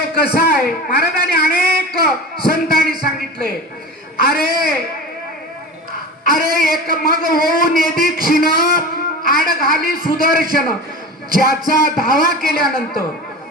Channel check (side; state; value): both; normal; correlation 0.32